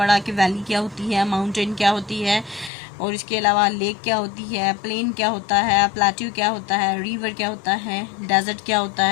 कि वैली क्या होती है, माउंटेन क्या होती है, और इसके अलावा लेक क्या होती है, प्लेन क्या होता है, प्लेट्यू क्या होता है, रिवर क्या होता है, डेजर्ट क्या होता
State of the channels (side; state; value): right; drops out; at 2.7 s